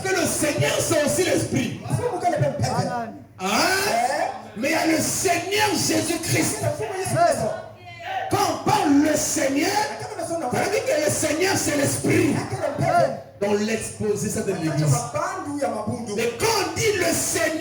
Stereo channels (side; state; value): both; identical; correlation 1.00